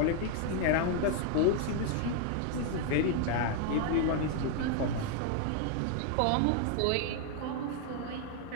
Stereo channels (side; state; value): both; different; correlation 0.00